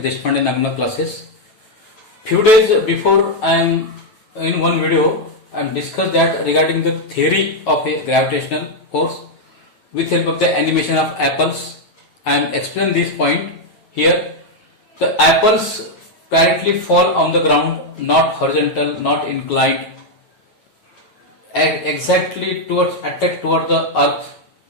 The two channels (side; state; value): right; late; 9.0 ms